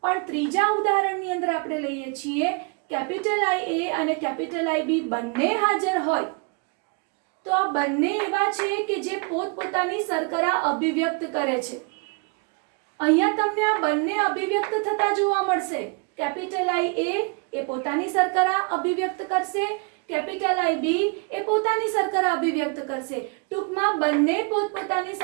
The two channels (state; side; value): quieter; left; 32.9 dB